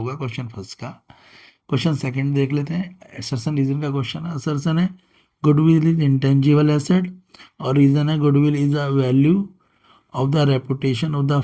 क्वेश्चन फर्स्ट का। क्वेश्चन सेकंड देख लेते हैं। असर्सन रीजन का क्वेश्चन है। असर्सन है गुडविल इज इंटेंजिबल एसेट, और रीजन है goodwill is a value of the reputation of the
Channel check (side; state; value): both; identical; correlation 1.00